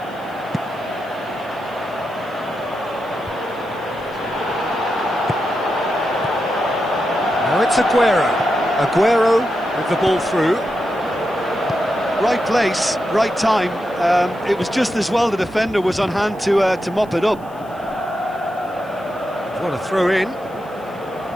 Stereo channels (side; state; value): left; noise; hiss, 29 dB below the sound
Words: Now it's Aguero. Aguero with the ball through. Right place, right time. It was just as well the defender was on hand to mop it up. What a throw in.